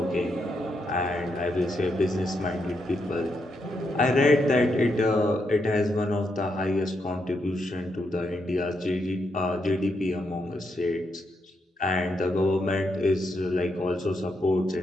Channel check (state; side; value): normal; both; correlation 0.81